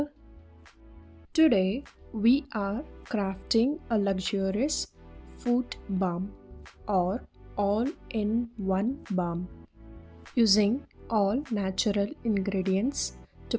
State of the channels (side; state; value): both; identical; correlation 1.00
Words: Today we are crafting a luxurious foot balm or all-in-one balm using all natural ingredients to